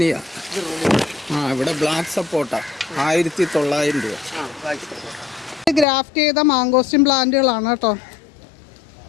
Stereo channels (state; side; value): drops out; right; at 5.9 s